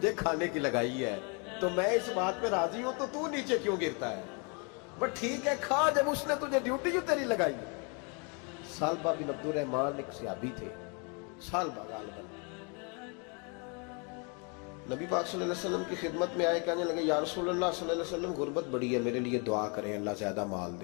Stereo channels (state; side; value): quieter; right; 33.7 dB